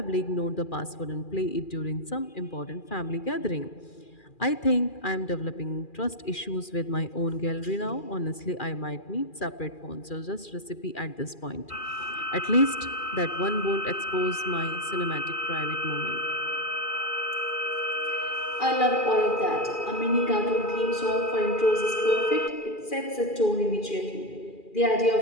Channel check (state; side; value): late; right; 2.4 ms